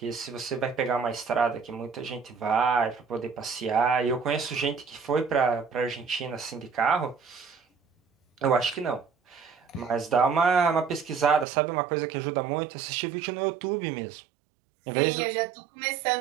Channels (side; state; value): left; drops out; at 11.5 s